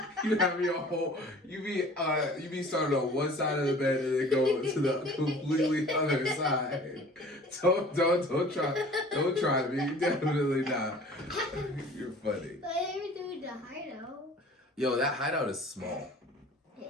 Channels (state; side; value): normal; both; correlation 0.47